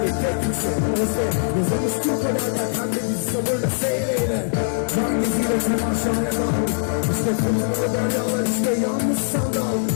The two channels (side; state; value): right; silent; 64 dB below the other